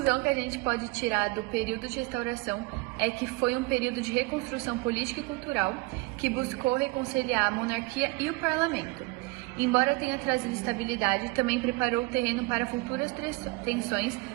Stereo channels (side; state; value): left; quieter; 23.3 dB